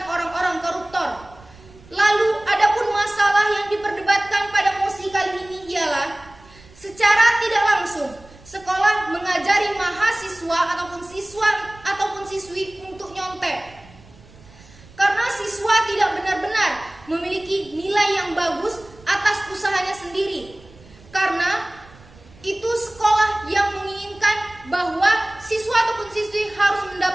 orang-orang koruptor. Lalu adapun masalah yang diperdebatkan pada mosi kali ini ialah secara tidak langsung sekolah mengajari mahasiswa ataupun siswa ataupun siswi untuk nyontek. Karena siswa tidak benar-benar memiliki nilai yang bagus atas usahanya sendiri. Karena itu sekolah yang menginginkan bahwa siswa ataupun siswi harus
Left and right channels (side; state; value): right; noise; rumble, 24 dB below the sound